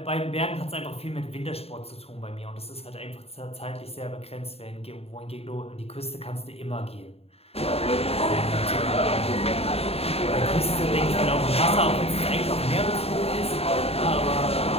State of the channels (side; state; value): right; late; 0.29 ms